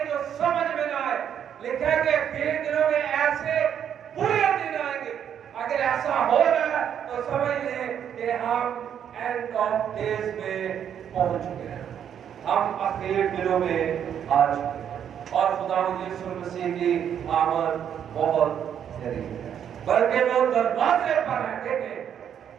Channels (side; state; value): left; quieter; 8.9 dB